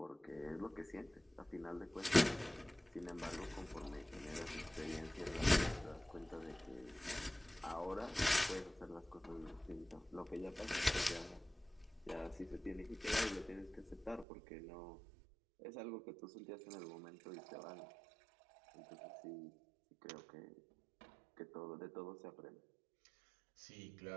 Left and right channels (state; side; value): drops out; left; at 14.2 s